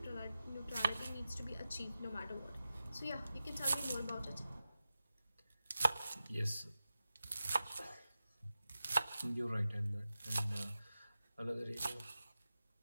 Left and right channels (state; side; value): inverted; both; correlation -0.93